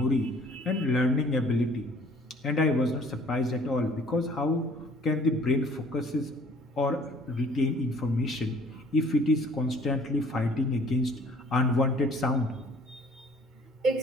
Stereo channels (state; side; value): normal; both; correlation 0.55